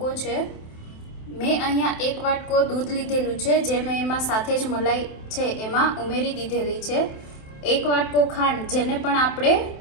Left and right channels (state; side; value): late; right; 27 ms